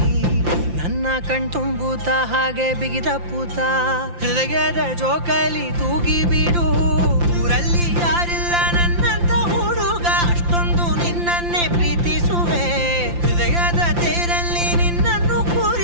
ನನ್ನ ಕಣ್ತುಂಬುತ್ತ ಹಾಗೆ ಬಿಗಿದ ಪೂತ. ಹೃದಯದ ಜೋಕಾಲಿ ತೂಗಿ ಬಿಡು. ಊರಲ್ಲಿ ಯಾರಿಲ್ಲ ನನ್ನಂತ ಹುಡುಗ, ಅಷ್ಟೊಂದು ನಿನ್ನನ್ನೇ ಪ್ರೀತಿಸುವೆ. ಹೃದಯದ ತೇರಲ್ಲಿ ನಿನ್ನನ್ನು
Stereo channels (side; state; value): left; late; 5.8 ms